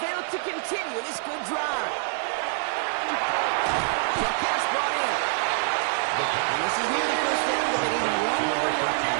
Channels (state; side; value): silent; left; digital silence